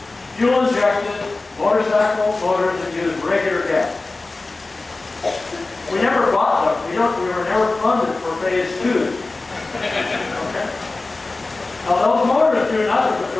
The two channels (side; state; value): right; quieter; 3.4 dB